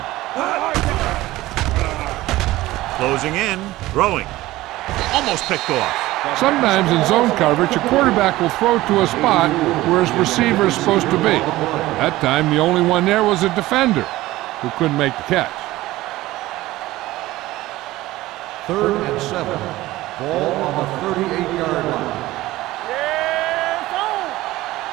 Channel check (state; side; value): quieter; left; 17.3 dB